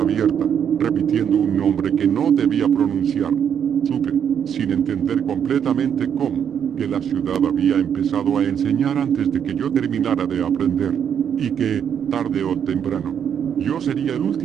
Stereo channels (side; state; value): left; quieter; 8.3 dB